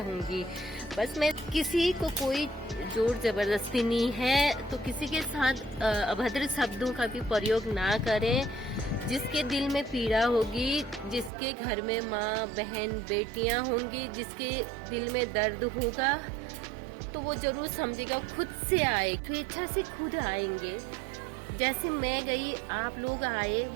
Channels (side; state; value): left; drops out; at 11.3 s